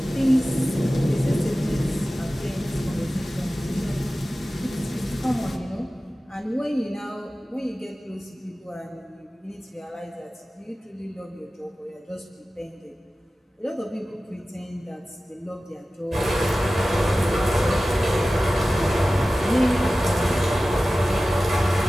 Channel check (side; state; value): both; normal; correlation 0.95